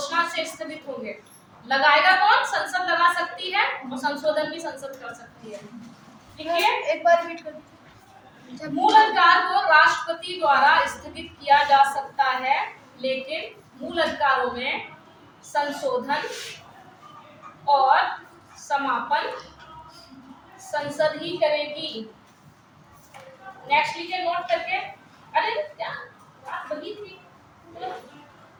से स्थगित होंगे। लगाएगा कौन? संसद लगा सकती है, और संशोधन भी संसद कर सकती है। ठीक है, एक बार रिपीट कर दीजिए। मूल अधिकार को राष्ट्रपति द्वारा स्थगित किया जा सकता है, लेकिन मूल अधिकारों में संशोधन और समापन संसद ही करेगी। नेक्स्ट लिखिए नोट करके। अरे क्या बात वही थी,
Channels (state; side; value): identical; both; correlation 1.00